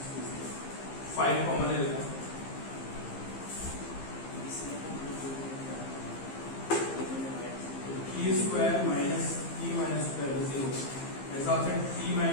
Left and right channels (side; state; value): right; late; 15 ms